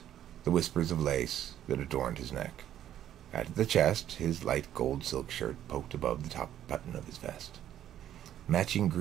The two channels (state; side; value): quieter; left; 11.2 dB